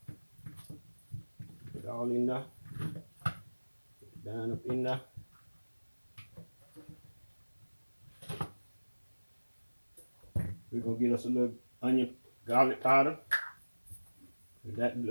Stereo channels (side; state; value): both; inverted; correlation -1.00